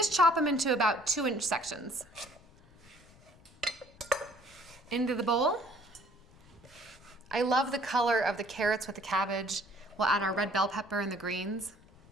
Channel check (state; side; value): noise; left; rumble, 26 dB below the sound